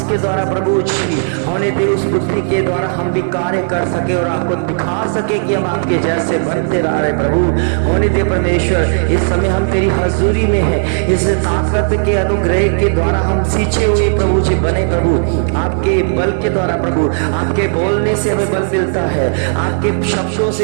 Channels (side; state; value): left; silent; digital silence